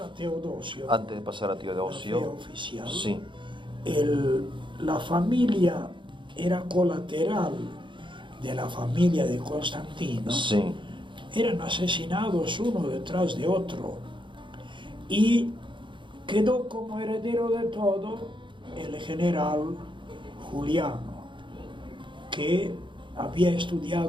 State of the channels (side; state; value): left; late; 0.23 ms